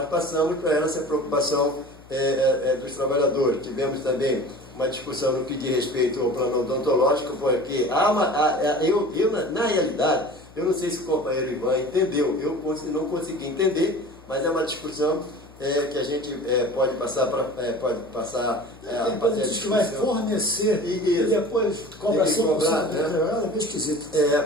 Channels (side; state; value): left; noise; hum, 23 dB below the sound